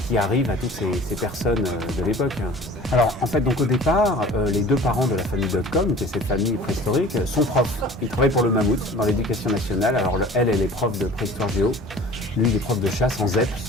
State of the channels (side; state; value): both; normal; correlation 0.44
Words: qui arrivent à toutes ces personnes de l'époque. Alors en fait, donc au départ, les deux parents de la famille Dotcom, qui est cette famille préhistorique, sont profs. Ils travaillent pour le Mammouth dans l'éducation nationale. Alors elle est prof de préhistoire géo, lui il est prof de chasse en ZEP,